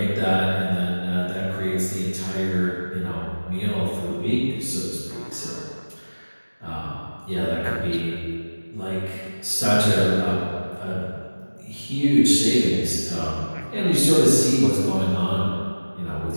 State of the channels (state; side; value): inverted; both; correlation -1.00